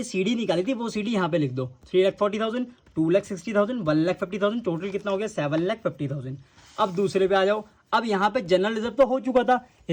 सीडी निकाली थी वो सीडी यहाँ पे लिख दो। 3,40,000, 2,60,000, 1,50,000, टोटल कितना हो गया 7,50,000। अब दूसरे पे आ जाओ। अब यहाँ पे जनरल रिजर्व तो हो चुका था,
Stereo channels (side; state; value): both; identical; correlation 1.00